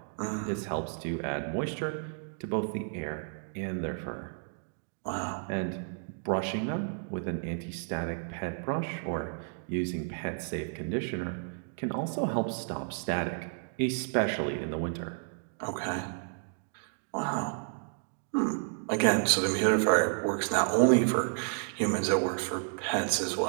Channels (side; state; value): left; silent; digital silence